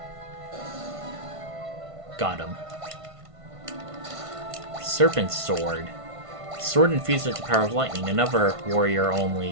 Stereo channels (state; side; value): late; left; 1.5 ms